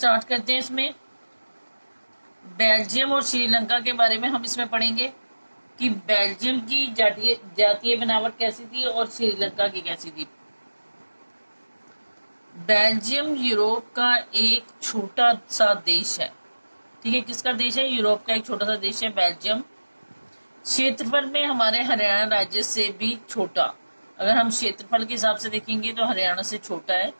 करते हैं। इसमें बेल्जियम और श्रीलंका के बारे में हम इसमें पढ़ेंगे कि बेल्जियम की जातीय बनावट कैसी थी और श्रीलंका की कैसी थी। बेल्जियम यूरोप का एक छोटा सा देश है। ठीक है, किसका देश है? यूरोप का एक छोटा सा देश है बेल्जियम। क्षेत्रफल में हमारे हरियाणा राज्य से भी छोटा। अगर हम क्षेत्रफल के हिसाब से देखेंगे तो हरियाणा से छोटा है।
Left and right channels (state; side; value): inverted; both; correlation -1.00